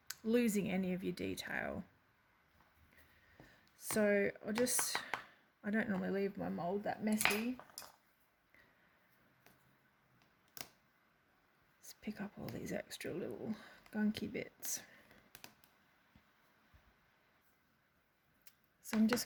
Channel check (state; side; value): identical; both; correlation 1.00